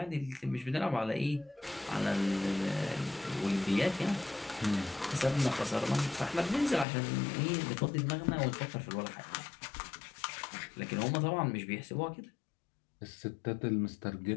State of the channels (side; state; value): right; drops out; at 6.9 s